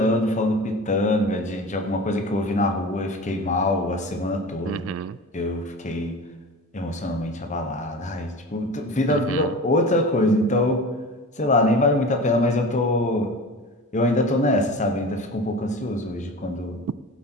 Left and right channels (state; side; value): normal; both; correlation 0.34